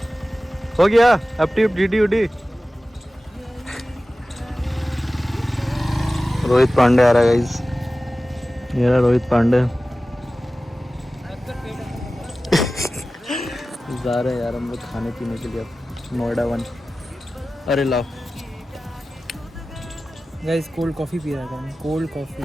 हो गया एफटी जीडी उडी। रोहित पांडे आ रहा है गाइस, ये रहा रोहित पांडे। जा रहे हैं यार हम लोग खाने पीने के लिए नोएडा 1। अरे लाओ गाइस कोल्ड कॉफी पी रहा था मैं, कोल्ड कॉफी।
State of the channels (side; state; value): both; normal; correlation 0.96